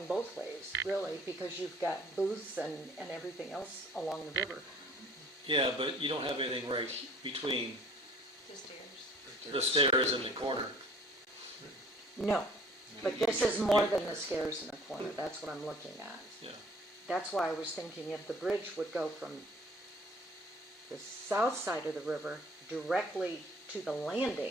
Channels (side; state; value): both; normal; correlation 0.52